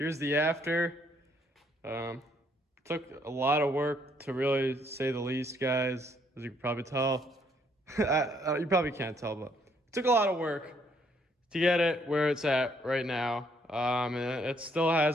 the after. Took a lot of work, to really say the least, guys, as you can probably tell. You probably can't tell, but it took a lot of work to get it where it's at right now. And it still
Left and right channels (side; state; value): both; normal; correlation 0.68